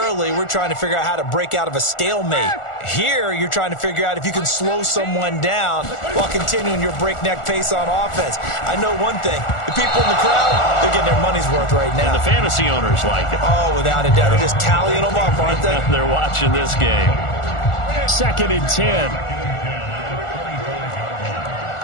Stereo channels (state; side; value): late; right; 1.4 ms